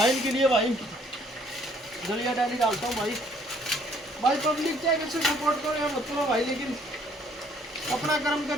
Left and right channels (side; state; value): both; normal; correlation 0.63